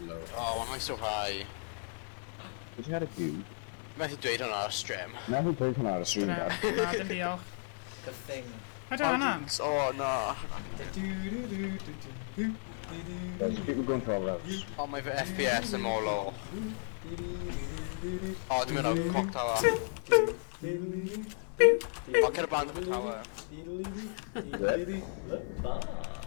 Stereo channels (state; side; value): silent; right; digital silence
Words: low. Oh, why am I so high? Did you had a few? Methu dweud hwnna ar stream. Never played him out of stream, Na, Dad. dim diolch. The thing. I don't know. Oh, no. There's people going 12 rounds. Oh, mae fy FPS yn mor low. Oh, dwi'n mynd o'r clock tower. Oh, cer y band am y tower.